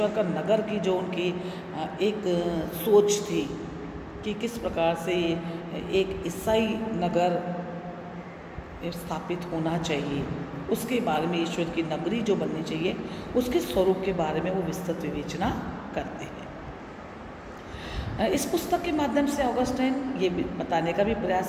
का नगर की जो उनकी एक सोच थी कि किस प्रकार से एक ईसाई नगर स्थापित होना चाहिए, उसके बारे में ईश्वर की नगरी जो बननी चाहिए उसके स्वरूप के बारे में वो विस्तृत विवेचना करते हैं। इस पुस्तक के माध्यम से ऑगस्टाइन ये बताने का भी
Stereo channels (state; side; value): identical; both; correlation 1.00